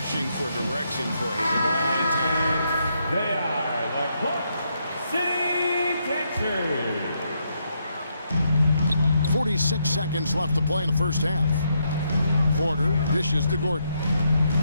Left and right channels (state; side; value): inverted; both; correlation -0.78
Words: for direction for a long time. They are the Clark City Texans. 46 seconds left to play in the first half. Porter dishes to Gordon.